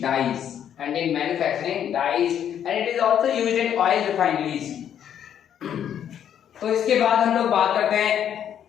dyes and it is also used in oil refineries। तो इसके बाद हम लोग बात करते हैं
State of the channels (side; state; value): right; quieter; 9.5 dB